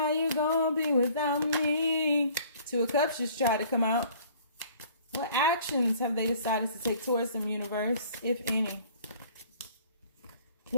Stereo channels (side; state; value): both; inverted; correlation -0.53